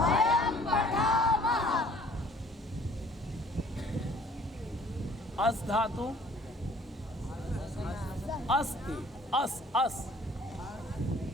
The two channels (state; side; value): normal; both; correlation 0.55